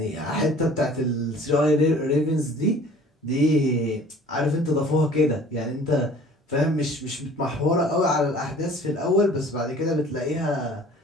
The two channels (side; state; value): both; normal; correlation 0.49